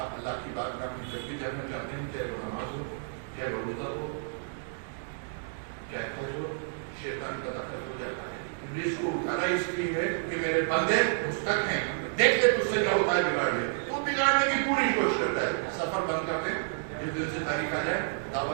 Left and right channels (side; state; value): left; silent; digital silence